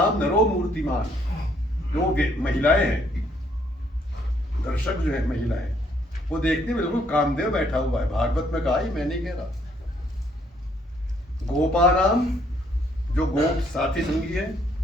नरो मूर्तिमान, जो महिलाएं हैं, दर्शक जो है महिलाएं, वो देखते बिल्कुल कामदेव बैठा हुआ है। भागवत में कहा ही, मैं नहीं कह रहा। गोपानाम, जो गोप साथी संगी है,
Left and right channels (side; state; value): both; normal; correlation 0.67